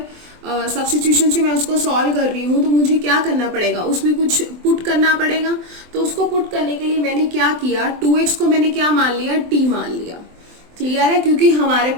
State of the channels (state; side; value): late; left; 24 ms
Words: सब्स्टिट्यूशन से मैं उसको सॉल्व कर रही हूँ तो मुझे क्या करना पड़ेगा, उसमें कुछ पुट करना पड़ेगा। तो उसको पुट करने के लिए मैंने क्या किया, 2x को मैंने क्या मान लिया, t मान लिया। क्लियर है, क्योंकि हमारे